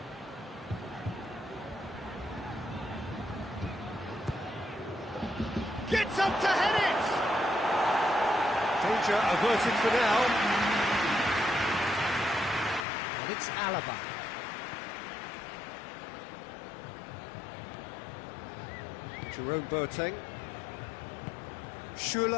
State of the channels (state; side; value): drops out; right; at 12.9 s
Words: Gets up to head it! Danger averted for now. And it's Alaba. Jerome Boateng.